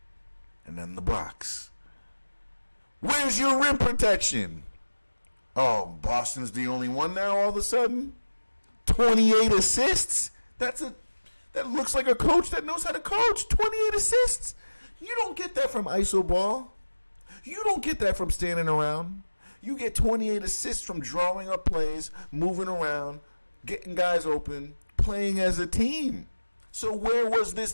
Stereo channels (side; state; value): both; inverted; correlation -1.00